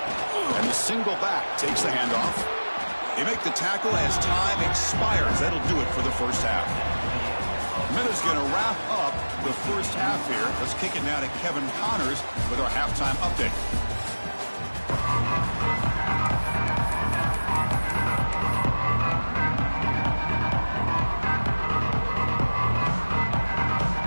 And the single back takes the handoff. They make the tackle as time expires. That'll do it for the first half. Miller's going to wrap up the first half here. Let's kick it now to Kevin Connors with our halftime update.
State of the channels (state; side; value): inverted; both; correlation -1.00